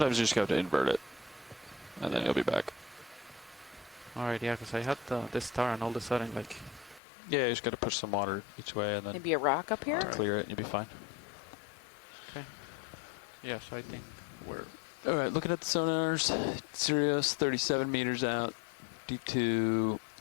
you just have to invert it, and then you'll be back. All right, yeah, because I had this star, and all of a sudden, like, Yeah, you just got to push some water each way, and then Maybe a rock up here? Alright. clear it, and you'll be fine. yeah. So I think we're All right, looking at the sonars, Sirius 37 meters out, D2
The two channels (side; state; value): right; drops out; at 7.0 s